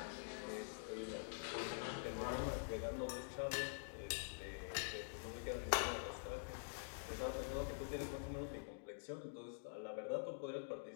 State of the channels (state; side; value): silent; right; digital silence